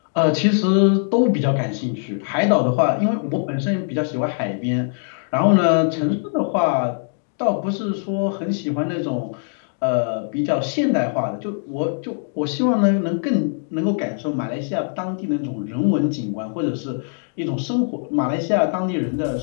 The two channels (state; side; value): silent; right; 64 dB below the other